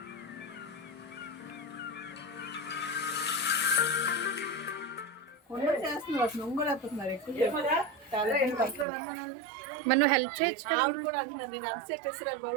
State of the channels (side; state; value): left; drops out; at 8.8 s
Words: మరి నువ్వు హెల్ప్ చేయొచ్చు కదా.